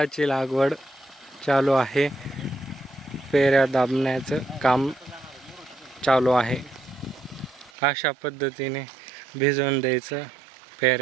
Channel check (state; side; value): drops out; left; at 7.7 s